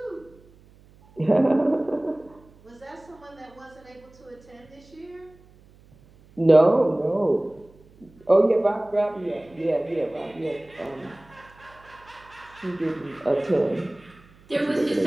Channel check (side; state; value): right; noise; hum, 27 dB below the sound